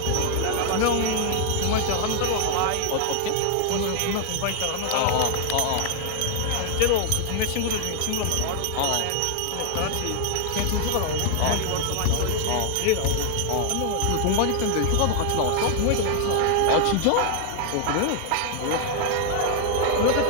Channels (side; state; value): both; different; correlation 0.00